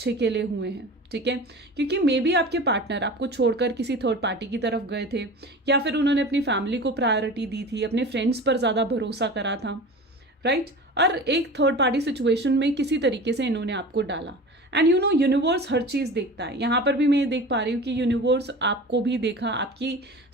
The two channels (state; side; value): normal; both; correlation 0.35